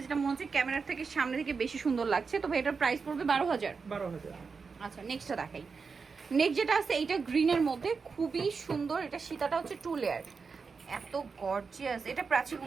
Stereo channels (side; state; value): left; quieter; 5.1 dB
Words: যেটা মনে হচ্ছে ক্যামেরার থেকে সামনে থেকে বেশি সুন্দর লাগছে। তো ভাই এটার প্রাইস পড়বে 12,000। আচ্ছা, নেক্সটটা দেখাই। নেক্সট যেটা আছে এইটা গ্রিনের মধ্যে খুবই সুন্দর, এটা সীতাটা হচ্ছে 2 লেয়ার, এত গর্জিয়াস। এটা প্রাচী